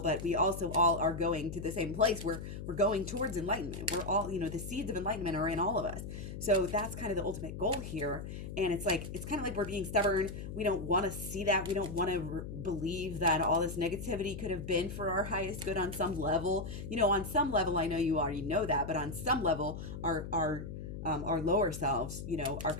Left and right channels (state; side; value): noise; left; hum, 8 dB below the sound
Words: we also all are going to the same place. We're going towards enlightenment. We're all, the seeds of enlightenment are in all of us. So that's kind of the ultimate goal here. And it's kind of like we're being stubborn. We don't want to see that. We don't want to believe that all this negativity could have been for our highest good on some level. On some level, I know you already know that, but on some level, our lower selves, are